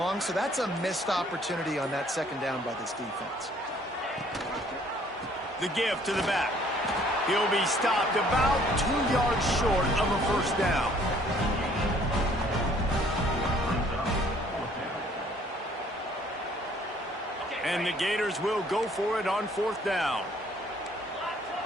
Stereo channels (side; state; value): both; normal; correlation 0.60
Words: so that's a missed opportunity on that second down by this defense. The give to the back. He'll be stopped about 2 yards short of a first down. And the Gators will go for it on fourth down. Black